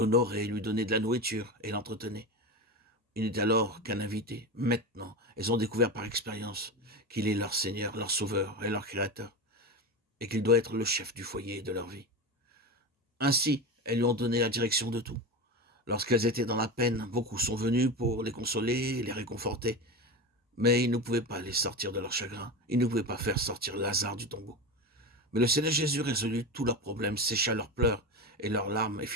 lui donnait de la nourriture et l'entretenait. Il n'était alors qu'un invité. Maintenant, elles ont découvert par expérience qu'il est leur Seigneur, leur Sauveur et leur Créateur, et qu'il doit être le chef du foyer et de leur vie. Ainsi, elles lui ont donné la direction de tout. Lorsqu'elles étaient dans la peine, beaucoup sont venus pour les consoler et les réconforter, mais ils ne pouvaient pas les sortir de leur chagrin, ils ne pouvaient pas faire sortir Lazare du tombeau. Mais le Seigneur Jésus résolut tous leurs problèmes, sécha leurs pleurs et leurs larmes et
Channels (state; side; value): normal; both; correlation 0.22